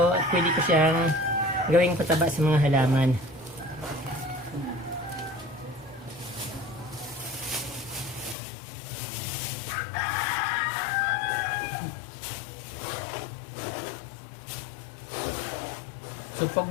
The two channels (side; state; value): right; drops out; at 8.3 s